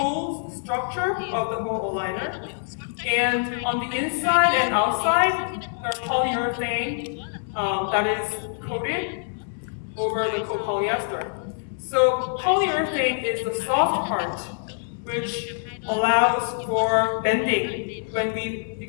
the structure of the whole aligner. And on the inside and outside, there's polyurethane that is coated over the copolyester. So polyurethane is the soft part, which allows for bending when we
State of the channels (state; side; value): silent; right; 62 dB below the other